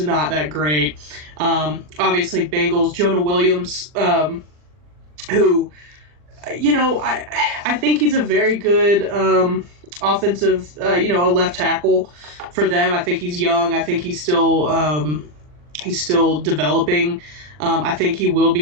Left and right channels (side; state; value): left; late; 40 ms